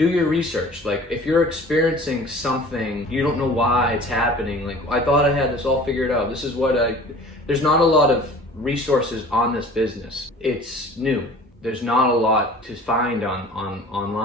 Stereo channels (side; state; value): both; normal; correlation 0.45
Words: your research. Like if you're experiencing something, you don't know why it's happening. Like I thought I had this all figured out. This is what there's not a lot of resources on this business. It's new. There's not a lot to find on